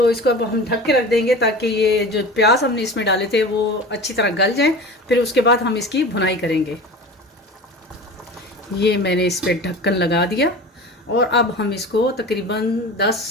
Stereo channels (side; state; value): both; normal; correlation 0.35